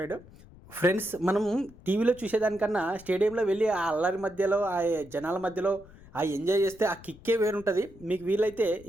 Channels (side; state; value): left; noise; rumble, 21 dB below the sound